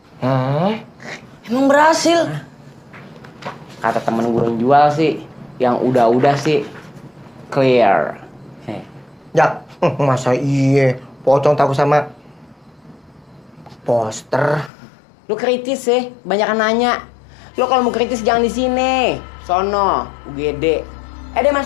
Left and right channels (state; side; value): drops out; right; at 14.7 s